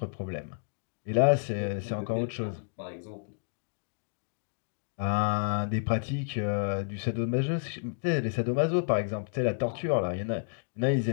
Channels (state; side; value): silent; right; digital silence